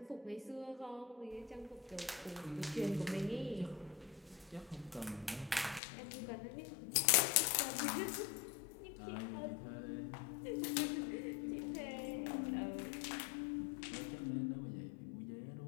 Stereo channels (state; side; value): drops out; right; at 5.8 s